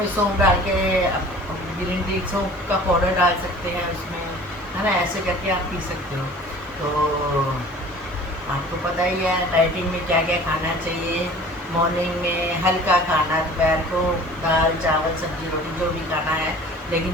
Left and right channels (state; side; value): normal; both; correlation 0.45